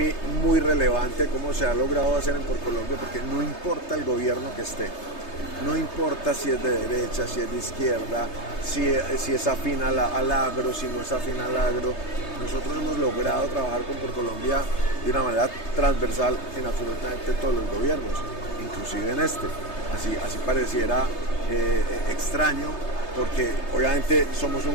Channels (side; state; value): right; late; 3.3 ms